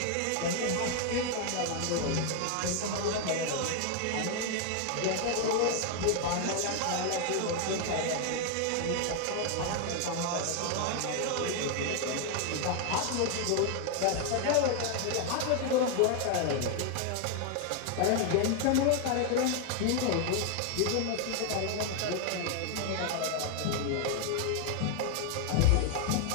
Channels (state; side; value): different; both; correlation 0.00